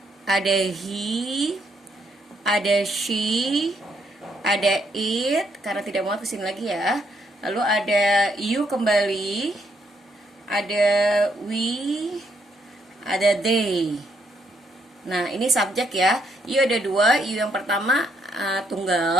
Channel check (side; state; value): both; normal; correlation 0.74